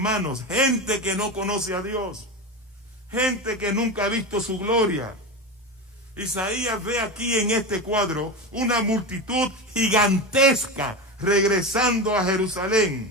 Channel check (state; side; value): normal; both; correlation 0.22